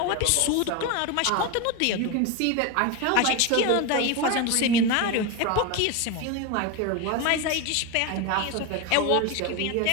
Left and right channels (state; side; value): different; both; correlation 0.03